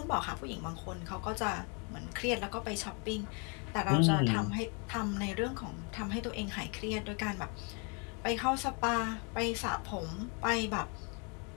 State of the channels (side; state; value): right; quieter; 34.8 dB